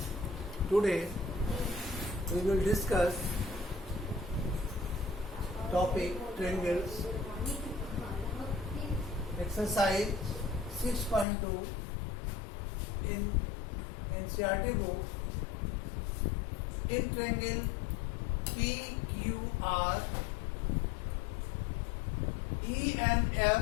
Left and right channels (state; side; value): drops out; right; at 11.2 s